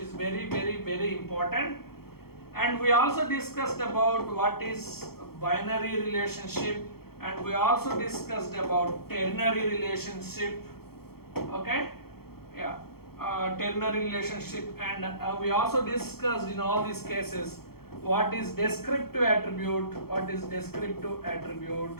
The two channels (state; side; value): late; right; 0.95 ms